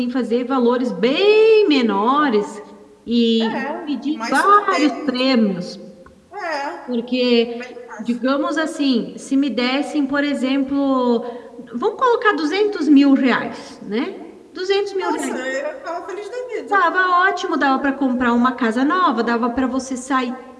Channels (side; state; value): both; identical; correlation 1.00